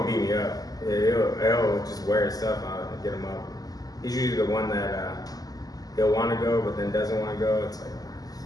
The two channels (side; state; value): right; late; 0.18 ms